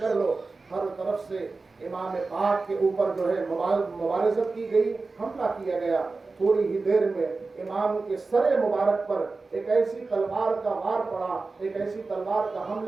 لو. ہر طرف سے امام پاک کے اوپر جو ہے مبارزت کی گئی، حملہ کیا گیا. تھوڑی ہی دیر میں امام کے سر مبارک پر ایک ایسی تلوار کا وار پڑا، ایک ایسی تلوار کا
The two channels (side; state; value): left; quieter; 3.8 dB